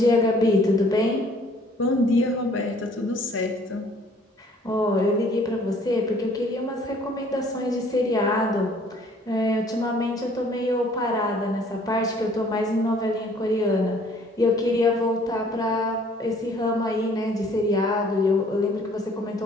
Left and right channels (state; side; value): normal; both; correlation 0.57